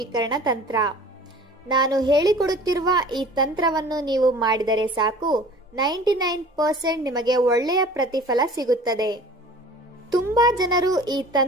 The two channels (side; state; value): both; normal; correlation 0.45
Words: ತಂತ್ರ. ನಾನು ಹೇಳಿಕೊಡುತ್ತಿರುವ ಈ ತಂತ್ರವನ್ನು ನೀವು ಮಾಡಿದರೆ ಸಾಕು, 99% ನಿಮಗೆ ಒಳ್ಳೆಯ ಪ್ರತಿಫಲ ಸಿಗುತ್ತದೆ. ತುಂಬಾ ಜನರು ಈ